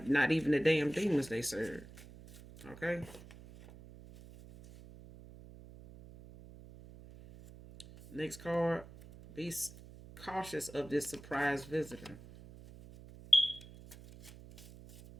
not even the damn demons they serve. Okay? Next card. Be cautious of this surprise visitor.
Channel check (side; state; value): right; noise; hum, 18 dB below the sound